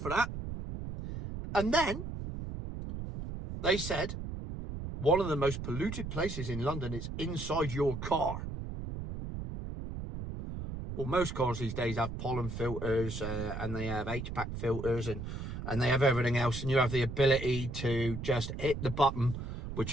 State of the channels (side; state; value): right; noise; rumble, 7 dB below the sound